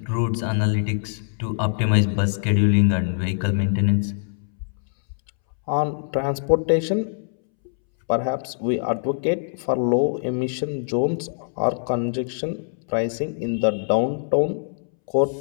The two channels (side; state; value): right; silent; 63 dB below the other